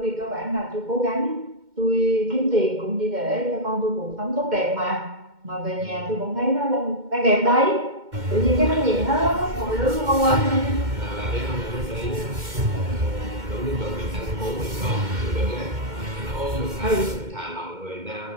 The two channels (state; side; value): late; left; 2.1 ms